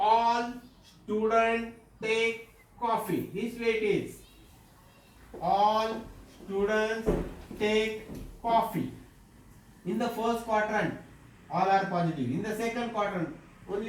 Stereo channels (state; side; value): identical; both; correlation 1.00